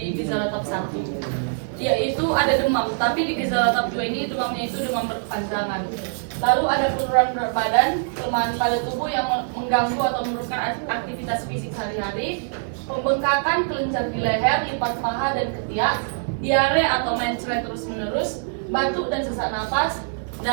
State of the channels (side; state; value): left; silent; 63 dB below the other